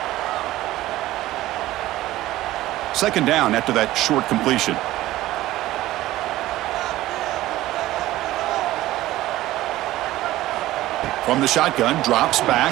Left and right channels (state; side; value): quieter; left; 16.0 dB